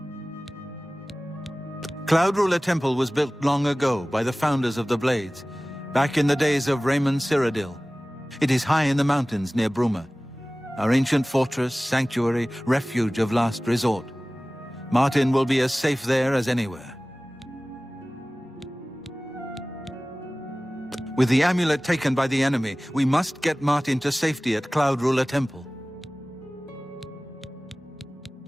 Cloud Ruler Temple was built long ago by the founders of the Blades, back in the days of Raymond Cyrodiil. It is high in the mountains near Bruma. Our ancient fortress, sanctuary, refuge of last resort. Martin will be as safe there as anywhere. With the amulet taken by the enemy, we must get Martin to safety at Cloud Ruler Temple.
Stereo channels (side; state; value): both; normal; correlation 0.98